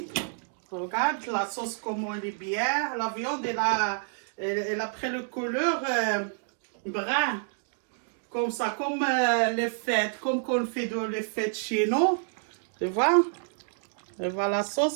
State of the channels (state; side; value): silent; left; digital silence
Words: Regarde la sauce comment elle est bien, la viande elle a pris le couleur brun comme ça, comme les fêtes, comme qu'on fait dans les fêtes chez nous, tu vois. Et voilà la